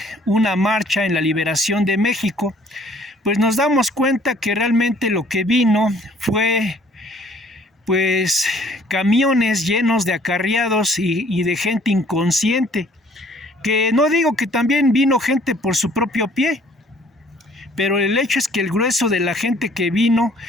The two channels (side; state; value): both; normal; correlation 0.58